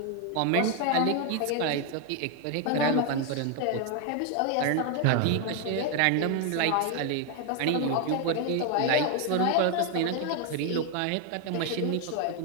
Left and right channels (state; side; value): different; both; correlation 0.01